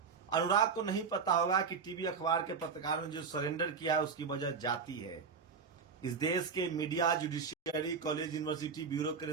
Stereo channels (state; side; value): quieter; left; 5.6 dB